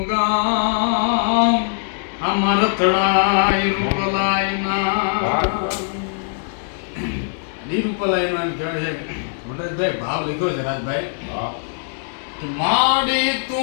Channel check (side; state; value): right; silent; 65 dB below the other